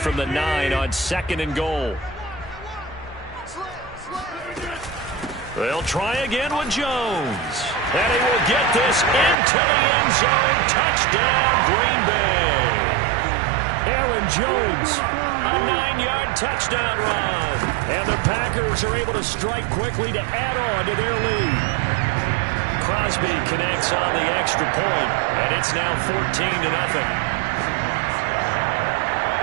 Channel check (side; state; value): left; drops out; at 9.3 s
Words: the 9 on 2nd and goal. They'll try again with Jones. And he will get this into the end zone. Touchdown, Green Bay. Aaron Jones, a 9-yard touchdown run. And the Packers are able to strike quickly to add on to their lead. Crosby connects on the extra point, and it's now 14-0.